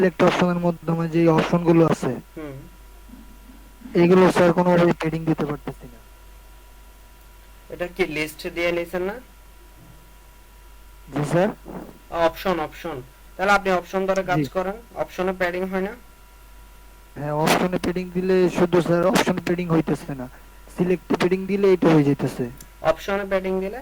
অপশনের মাধ্যমে যে অপশন গুলো আছে, হুম, এইগুলো স্যার কোনোভাবে ট্রেডিং দিতে পারতেছি না। এটা কি লিস্ট দিয়ে নিছেন না? জি স্যার। অপশন অপশন, তাহলে আপনি অপশন ধরে কাজ জি করেন। অপশনে প্যাডিং হয় না? হ্যাঁ, অপশনে ট্রেডিং দিলে শুধু স্যার অপশন ট্রেডিং হইতেছে না, সিলেক্ট ট্রেডিং দিলে এটা হয়ে যাইতেছে। অপশনে প্যাডিং দিলে?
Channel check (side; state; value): both; identical; correlation 1.00